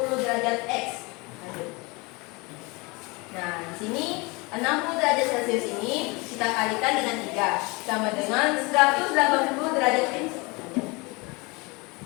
derajat X. Nah, di sini 60 derajat Celcius ini kita kalikan dengan 3 sama dengan 180 derajat X.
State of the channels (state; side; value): quieter; right; 26.4 dB